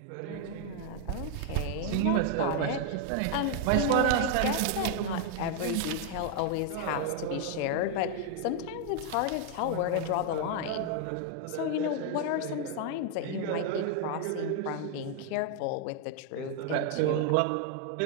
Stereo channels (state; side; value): different; both; correlation 0.00